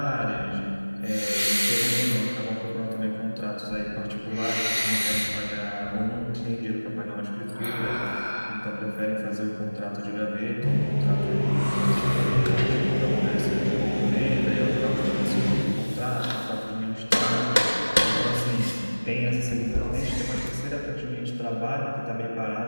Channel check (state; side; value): inverted; both; correlation -1.00